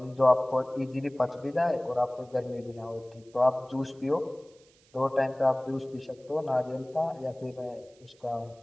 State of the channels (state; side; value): noise; right; hiss, 30 dB below the sound